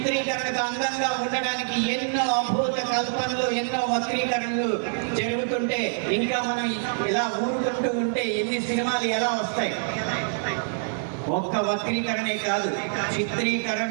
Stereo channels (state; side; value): silent; left; digital silence